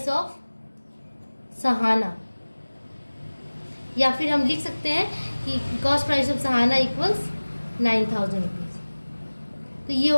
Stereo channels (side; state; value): both; inverted; correlation -1.00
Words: of Sahana, या फिर हम लिख सकते हैं कि cost price of Sahana equals 9000 rupees. तो ये